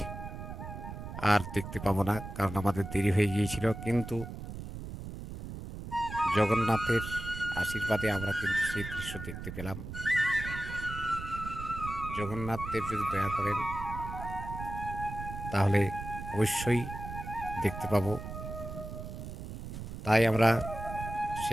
আর দেখতে পাবো না, কারণ আমাদের দেরি হয়ে গিয়েছিল। কিন্তু জগন্নাথের আশীর্বাদে আমরা কিন্তু সেই দৃশ্য দেখতে পেলাম। জগন্নাথ দেব যদি দয়া করেন তাহলে অবশ্যই দেখতে পাবো। তাই আমরা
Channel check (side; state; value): right; noise; rumble, 9 dB below the sound